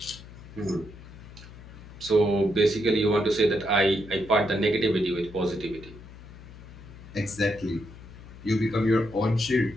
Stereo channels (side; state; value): left; noise; hum, 17 dB below the sound